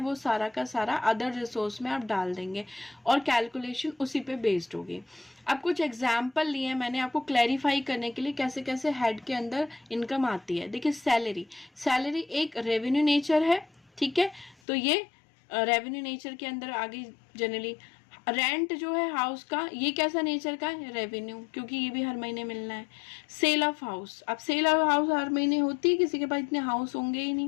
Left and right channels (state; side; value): drops out; right; at 14.6 s